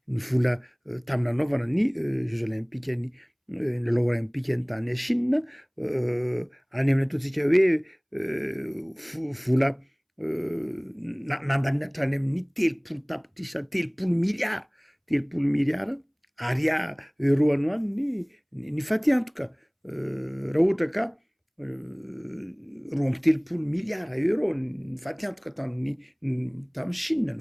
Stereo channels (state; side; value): identical; both; correlation 1.00